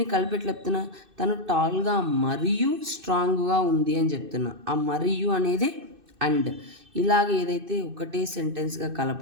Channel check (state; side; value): late; left; 2.6 ms